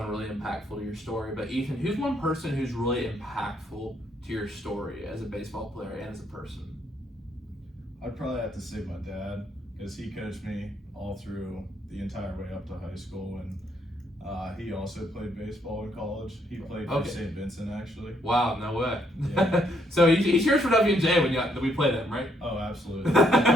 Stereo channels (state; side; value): normal; both; correlation 0.72